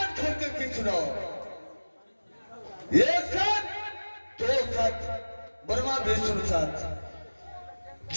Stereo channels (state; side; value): inverted; both; correlation -1.00